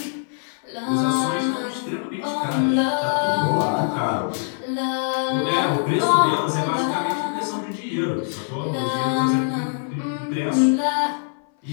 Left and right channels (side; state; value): right; silent; 60 dB below the other